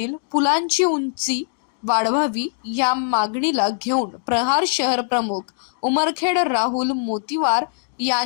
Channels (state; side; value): silent; right; digital silence